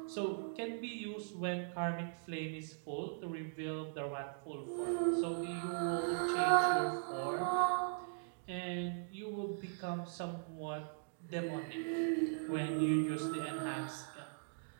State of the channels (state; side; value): silent; left; digital silence